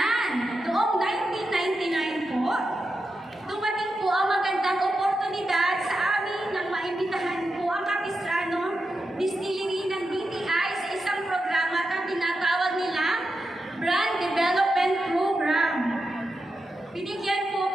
noong 1999 po, dumating po ang magandang oportunidad sa amin nang maimbitahan po ang Capistrano Distillery ng DTI sa isang programa na tinatawag nila Brand Development Program. Binigyan po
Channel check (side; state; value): both; normal; correlation 0.88